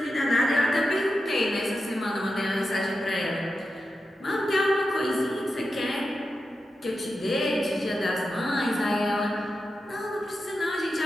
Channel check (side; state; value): both; normal; correlation 0.90